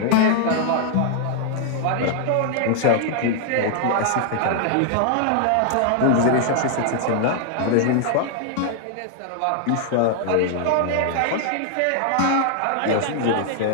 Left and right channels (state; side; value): different; both; correlation 0.00